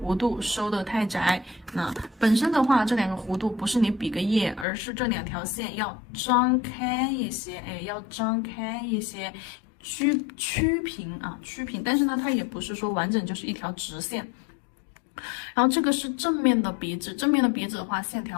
度收的太窄。那本身的话，这2个弧度不是你比个耶，而是这2条线要张开一些，哎，要张开一些，曲平啊，曲平。但是呢，它也不是说完整就是一条直线。然后这个是正面的鼻子，正面的鼻子的话，线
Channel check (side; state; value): right; drops out; at 4.7 s